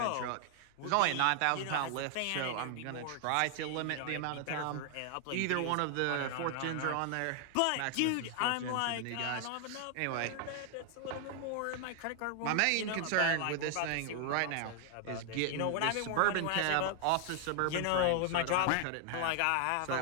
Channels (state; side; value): different; both; correlation 0.00